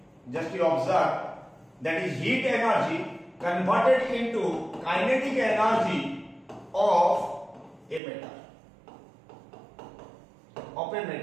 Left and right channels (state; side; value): drops out; left; at 8.0 s